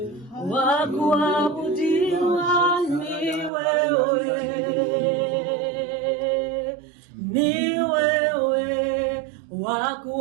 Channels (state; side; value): drops out; left; at 3.5 s